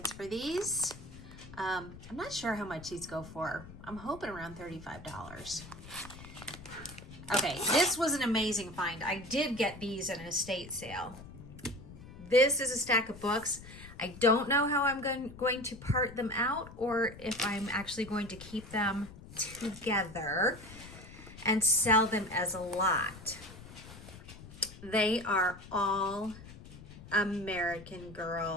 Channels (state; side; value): noise; left; rumble, 16 dB below the sound